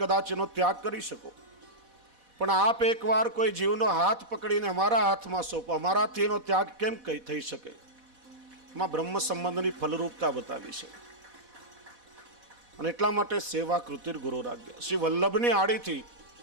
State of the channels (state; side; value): late; left; 4.1 ms